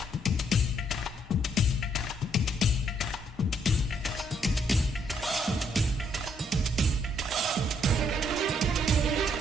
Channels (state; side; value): normal; both; correlation 0.70